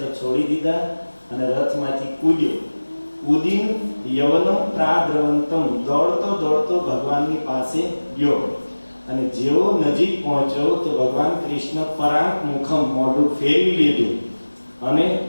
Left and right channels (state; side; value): inverted; both; correlation -1.00